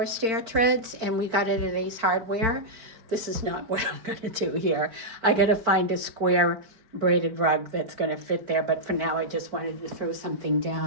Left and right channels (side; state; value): left; late; 4.5 ms